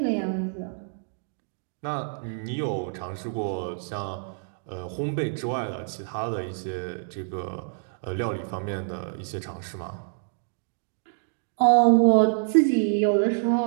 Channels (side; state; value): left; silent; digital silence